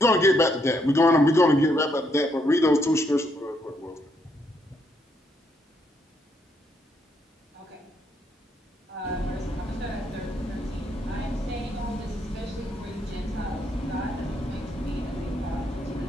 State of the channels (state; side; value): normal; both; correlation 0.75